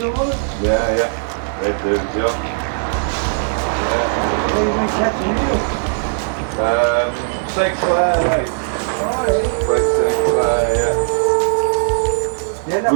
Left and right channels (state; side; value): silent; left; 55 dB below the other